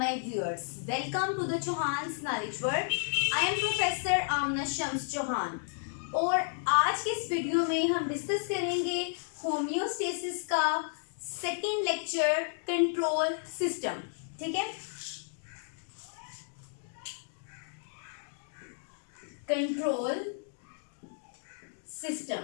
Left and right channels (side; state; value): right; silent; digital silence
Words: viewers. Welcome to the Chauhan's Knowledge World. I am Professor Amna Shams Chauhan. और आज के इस video में हम discuss करेंगे होम्योस्टेसिस का सेकेंड लेक्चर कंट्रोल सिस्टम. ठीक है, कंट्रोल